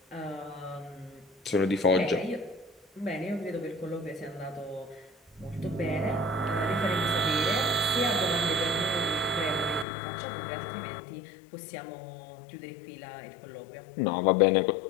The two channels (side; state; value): right; drops out; at 9.9 s